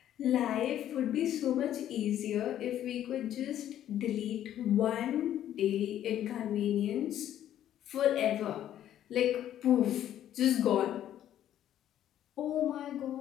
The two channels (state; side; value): quieter; right; 11.4 dB